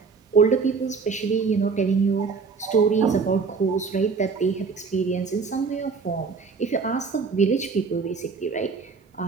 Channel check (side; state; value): left; quieter; 5.0 dB